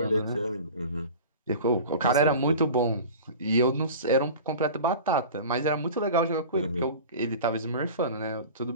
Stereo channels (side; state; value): both; inverted; correlation -0.36